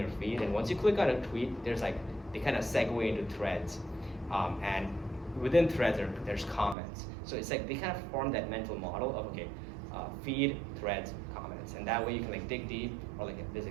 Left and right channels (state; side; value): drops out; left; at 6.8 s